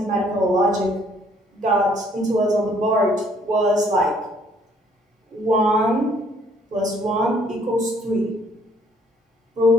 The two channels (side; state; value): both; normal; correlation 0.63